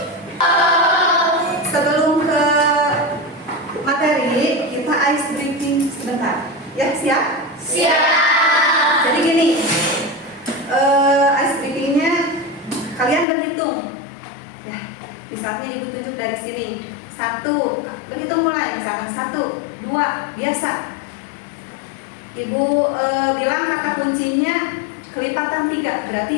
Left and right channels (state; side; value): drops out; right; at 13.2 s